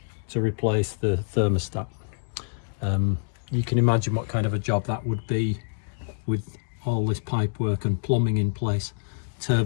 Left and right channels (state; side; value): silent; right; digital silence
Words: to replace the thermostat. You can imagine what kind of a job that would be with all this pipe work and plumbing in place.